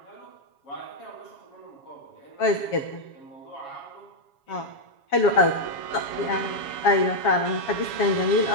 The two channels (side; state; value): right; late; 7.2 ms